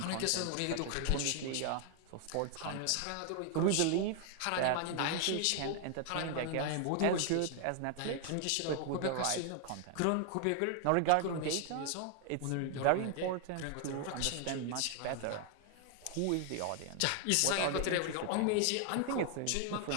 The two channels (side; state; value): both; different; correlation 0.00